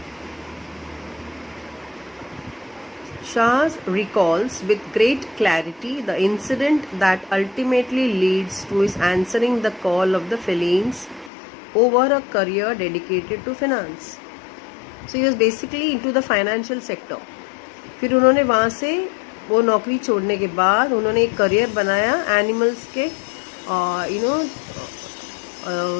Shah recalls with great clarity the incident that ultimately leads to his answering the call of the felines over a career dedicated to finance. So he was basically into the financial sector. फिर उन्होंने वहाँ से वो नौकरी छोड़ने के बाद उन्होंने एक करियर बनाया एनिमल्स के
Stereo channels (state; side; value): drops out; right; at 11.3 s